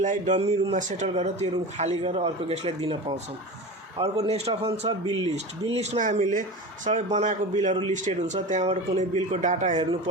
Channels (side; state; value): both; normal; correlation 0.29